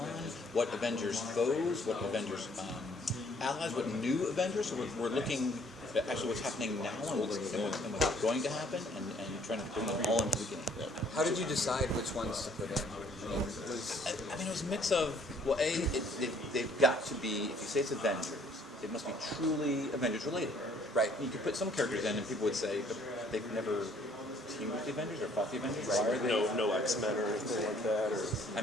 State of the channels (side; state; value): both; normal; correlation 0.61